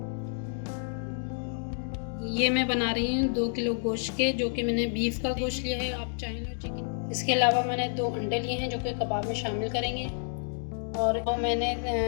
ये मैं बना रही हूँ 2 किलो गोश्त के, जो कि मैंने बीफ का गोश्त लिया है, आप चाहें तो चिकन। इसके अलावा मैंने 2 अंडे लिए हैं, जो कि कबाब में शामिल करेंगे। और मैंने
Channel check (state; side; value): silent; right; digital silence